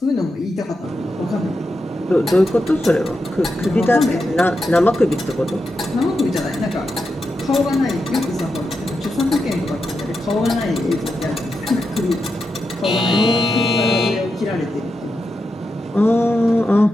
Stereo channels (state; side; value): normal; both; correlation 0.88